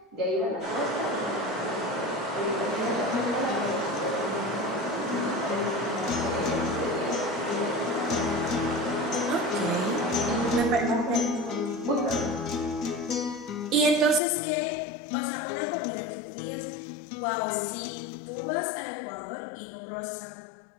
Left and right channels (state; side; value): drops out; right; at 14.2 s